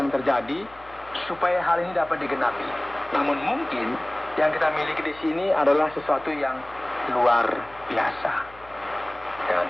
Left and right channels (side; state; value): left; noise; hum, 23 dB below the sound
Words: terjadi supaya hal ini dapat digenapi. Namun mungkin yang kita miliki di sini adalah sesuatu yang luar biasa. Dan